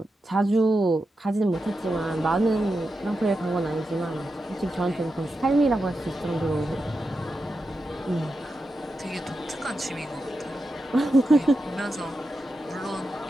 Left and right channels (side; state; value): both; normal; correlation 0.89